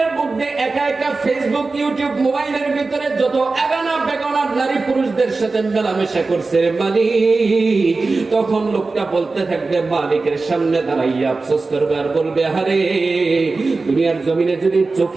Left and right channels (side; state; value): left; quieter; 3.8 dB